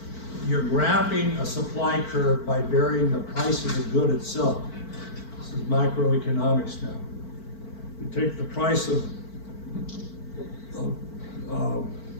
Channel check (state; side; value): late; right; 4.5 ms